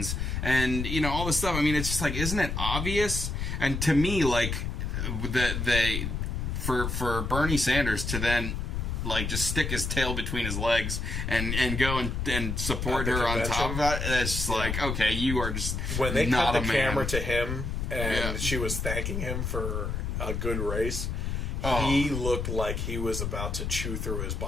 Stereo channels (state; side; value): noise; left; rumble, 2 dB below the sound